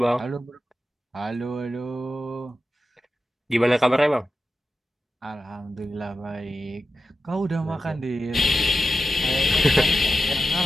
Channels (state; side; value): normal; both; correlation 0.90